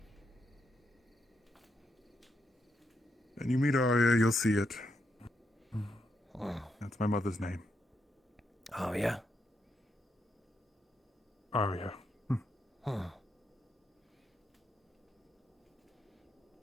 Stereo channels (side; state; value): both; normal; correlation 0.81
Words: When you meet Arya, you'll see it. Oh, That's my mother's name. yeah? Arya. Huh.